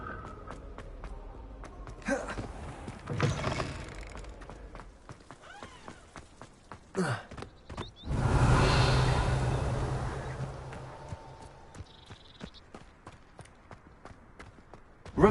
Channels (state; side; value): identical; both; correlation 1.00